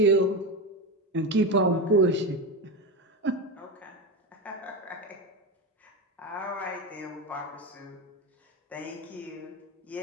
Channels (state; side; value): normal; both; correlation 0.17